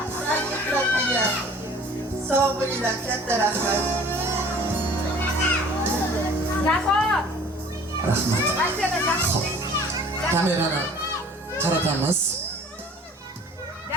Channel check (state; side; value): normal; both; correlation 0.49